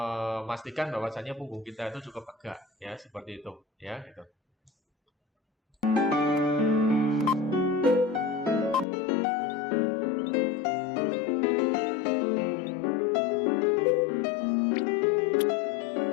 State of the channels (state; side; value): drops out; right; at 8.8 s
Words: bahwasannya punggung kita itu cukup tegak ya, seperti itu ya gitu.